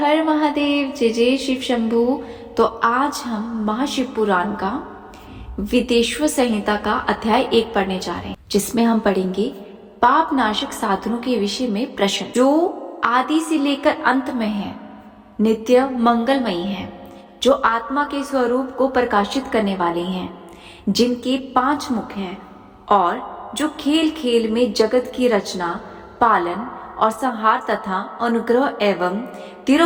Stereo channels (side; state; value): both; identical; correlation 1.00